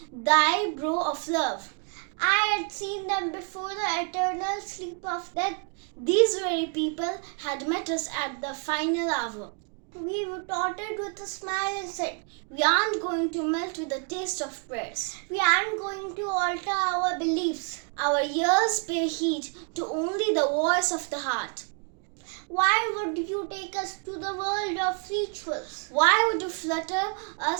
thy brow of love. I had seen them before the eternal sleep of death. These very people had met us at the final hour. We retorted with a smile and said, we aren't going to melt with the taste of prayers. We aren't going to alter our beliefs. Our ears pay heed to only the voice of the heart. Why would you take us to the world of rituals? Why would you flutter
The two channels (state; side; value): quieter; left; 39.6 dB